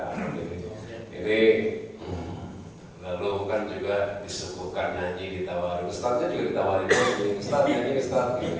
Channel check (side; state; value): both; identical; correlation 1.00